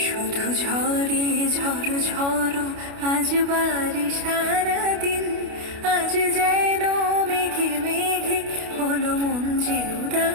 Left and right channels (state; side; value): late; left; 29 ms